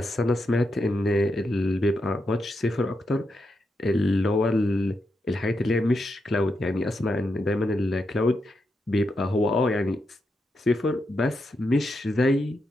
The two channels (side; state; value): both; normal; correlation 0.85